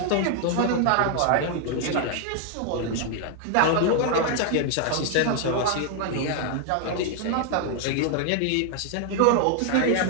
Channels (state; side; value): different; both; correlation 0.00